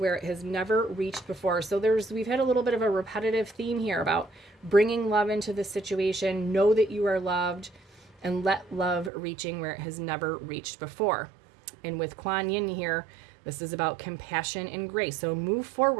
it has never reached before. So we've had a little bit of a repetitive theme here about bringing love into the situation. Know that you are loved, and let love reaching where it has never reached before. And with Kuan Yin here, this is about compassion and grace. So move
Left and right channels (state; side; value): drops out; left; at 9.1 s